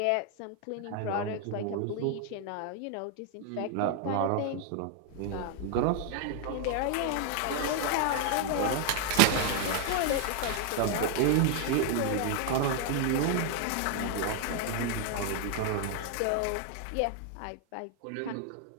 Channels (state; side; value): different; both; correlation 0.00